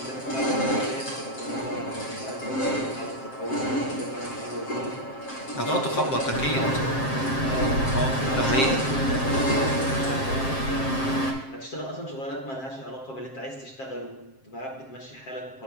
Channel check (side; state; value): right; late; 7.6 ms